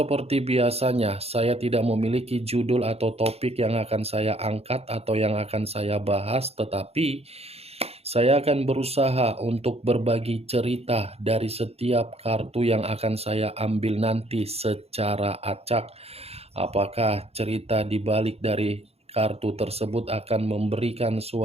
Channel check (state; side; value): late; left; 0.29 ms